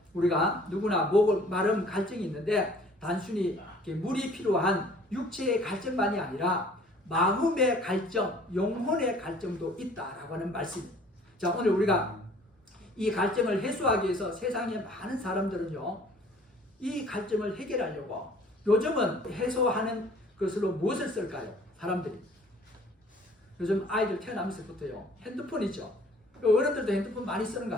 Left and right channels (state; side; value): normal; both; correlation 0.54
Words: 우리가 누구나 목 마름 갈증이 있는데 단순히 물이 필요한 육체의 갈증만이 아니라 마음의 갈증, 영혼의 갈증도 있다라고 하는 말씀입니다. 자 오늘 우리가 이 갈증을 해소하기 위해서 세상에 많은 사람들은요 이 갈증을 해결하려고 요즘은 해소하는 것으로 무엇을 쓸까요? 사람들이 요즘 아이들 태어나면서부터요 핸드폰 있죠. 어른들도 핸드폰 많이 쓰는 것